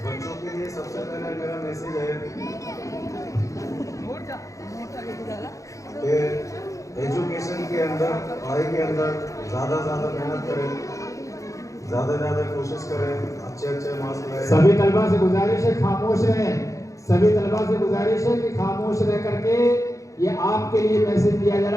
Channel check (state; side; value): late; right; 0.15 ms